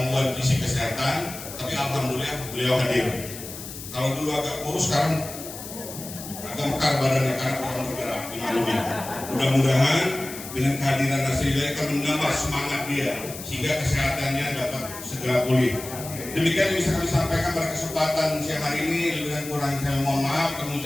fisik kesehatan, tapi alhamdulillah beliau hadir. Kalau dulu agak kurus, sekarang agak mekar badannya karena kurang bergerak, dimaklumi. Mudah-mudahan dengan kehadiran Nasrilah akan menambah semangat dia sehingga kesehatannya dapat segera pulih. Demikian yang bisa kami sampaikan pada kesempatan siang hari ini. Lebih dan kurang saya mohon maaf dan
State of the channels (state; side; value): noise; left; hiss, 12 dB below the sound